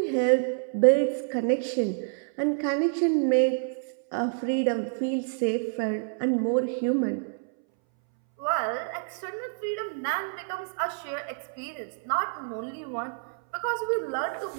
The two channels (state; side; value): silent; left; 59 dB below the other